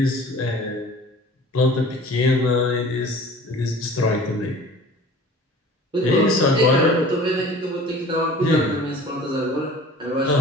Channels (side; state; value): both; normal; correlation 0.44